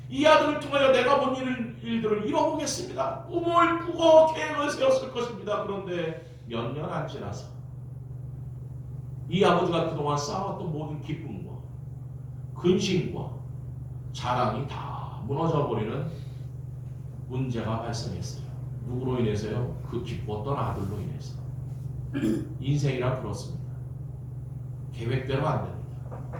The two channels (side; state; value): both; identical; correlation 1.00